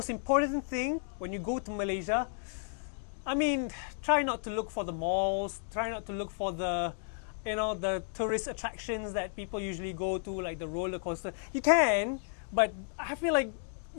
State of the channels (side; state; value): right; silent; digital silence